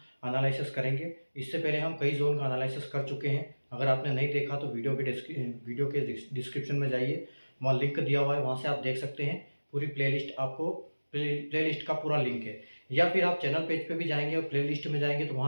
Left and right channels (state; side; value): inverted; both; correlation -1.00